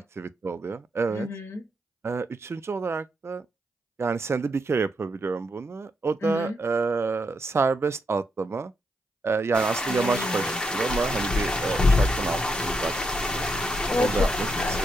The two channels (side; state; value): both; normal; correlation 0.80